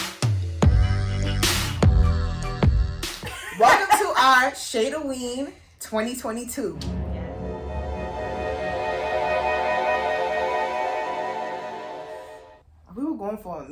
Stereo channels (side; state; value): both; identical; correlation 1.00